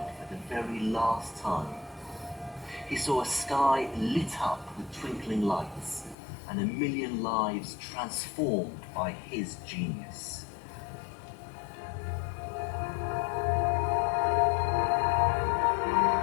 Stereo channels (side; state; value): right; drops out; at 6.2 s